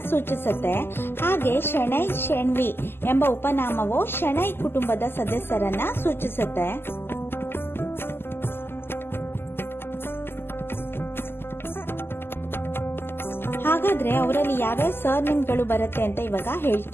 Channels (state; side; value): late; right; 0.11 ms